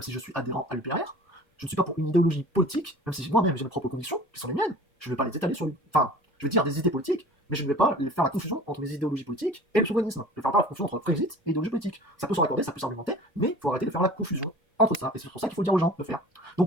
si je suis adhérent à l'UPR. Je ne suis pas pour une idéologie politique, même si moi-même j'ai mes propres convictions, qui sont les miennes. Je ne vais pas les étaler sur enfin, je vais dire des idées politiques, mais je ne vais pas faire la confusion entre mes idéologies politiques et le souverainisme. Je ne vais faire pas la confusion entre Brexit et idéologie politique. Ça peut se raccorder, ça peut s'argumenter, mais il faut arrêter de faire la confusion entre ça. Et c'est pour ça qu'il faut dire aux gens de faire.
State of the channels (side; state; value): both; normal; correlation 0.42